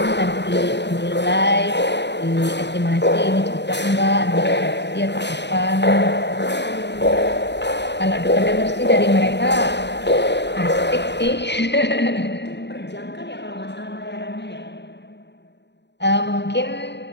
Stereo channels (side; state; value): right; late; 0.50 ms